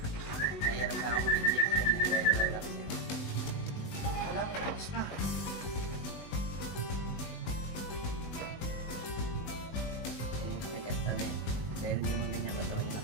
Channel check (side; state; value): right; late; 20 ms